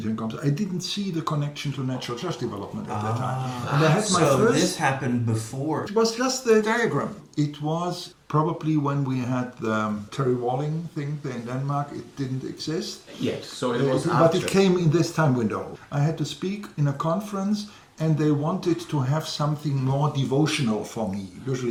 compass. I didn't see the connection to natural church development at that time. And I had my first. This happened before. It was just the diagram. It was probably when we had the Terry Walling thing there in Denmark. It didn't exist. Yes, so it was but it came in this time window. I had to speak in a conference, and they wanted to have something more devotional for me.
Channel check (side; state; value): both; identical; correlation 1.00